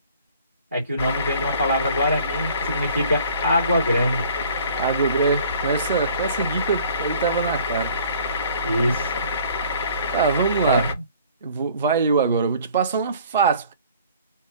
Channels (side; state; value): both; inverted; correlation -0.53